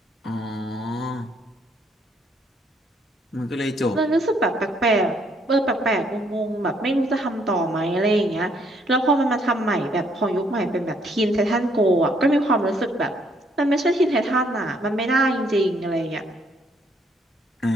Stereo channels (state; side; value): normal; both; correlation 0.68